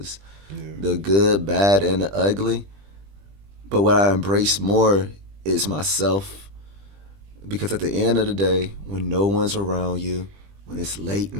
Yeah. the good, bad, and the ugly. But what I embrace more is myself. Because at the end of the day, when no one's around you, when it's late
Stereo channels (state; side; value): late; left; 20 ms